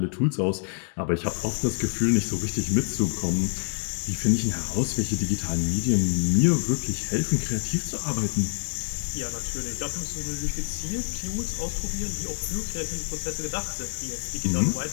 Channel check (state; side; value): silent; right; 60 dB below the other